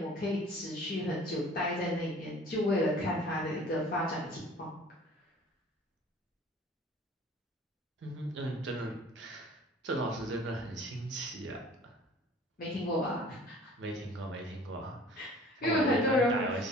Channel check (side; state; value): both; normal; correlation 0.48